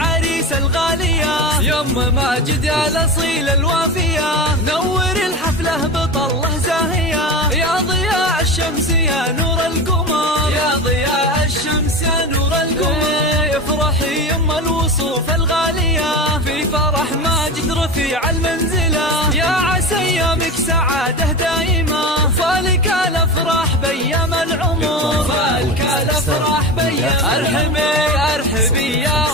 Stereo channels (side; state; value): both; normal; correlation 0.26